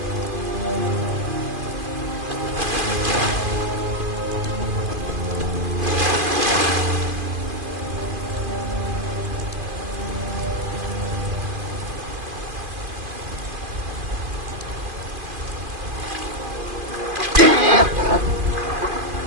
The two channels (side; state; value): left; late; 2.5 ms